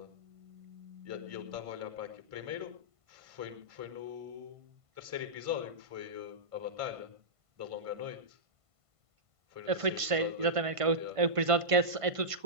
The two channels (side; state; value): left; late; 1.5 ms